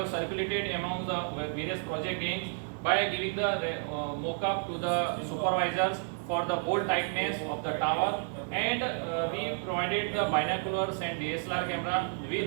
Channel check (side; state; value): left; silent; 57 dB below the other